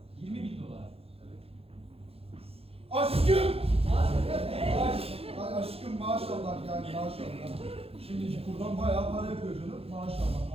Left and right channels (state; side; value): late; left; 0.28 ms